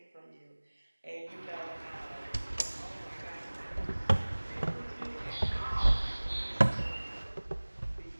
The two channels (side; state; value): both; inverted; correlation -1.00